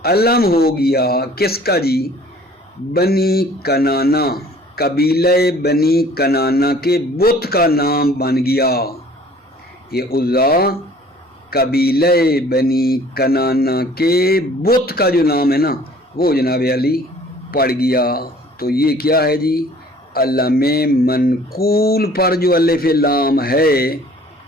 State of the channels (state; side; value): normal; both; correlation 0.52